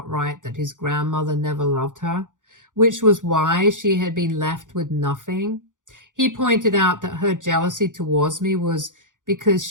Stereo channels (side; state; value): left; late; 0.88 ms